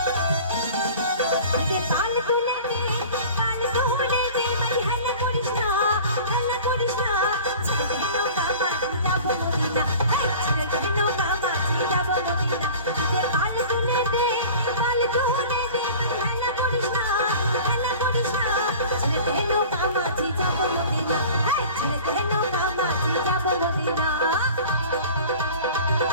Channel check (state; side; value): inverted; both; correlation -0.42